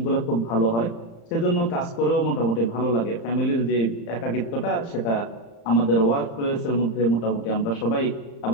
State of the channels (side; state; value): right; late; 35 ms